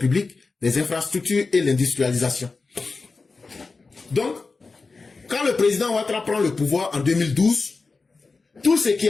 les infrastructures et l'industrialisation. Donc, quand le président Ouattara prend le pouvoir en 2012, tout ce qui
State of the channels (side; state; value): right; quieter; 4.1 dB